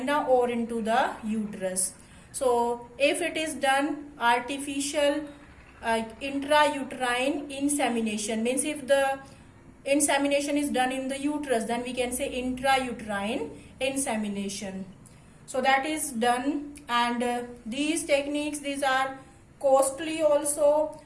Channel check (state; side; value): identical; both; correlation 1.00